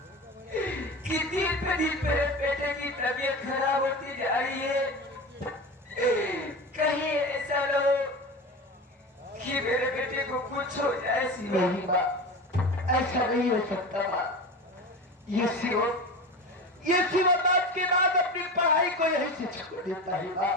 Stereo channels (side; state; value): both; normal; correlation 0.28